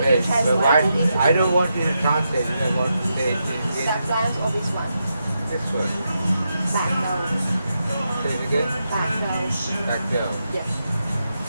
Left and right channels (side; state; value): both; inverted; correlation -0.85